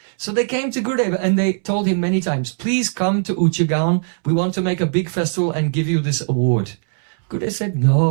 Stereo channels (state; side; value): silent; left; 66 dB below the other